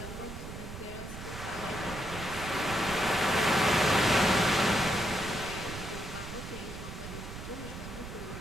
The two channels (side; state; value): right; noise; rumble, 10 dB below the sound